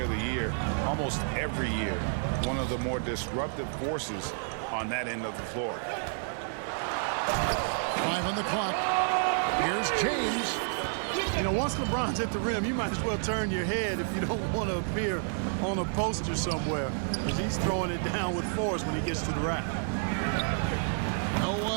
of the Year almost every year. One of the more disruptive forces on that end of the floor. 5 on the clock. Here's James. You know, once LeBron's at the rim, you might as well turn your head if you don't want to appear on a poster somewhere, because he's throwing it down with force when he gets to the rack. No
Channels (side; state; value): left; silent; digital silence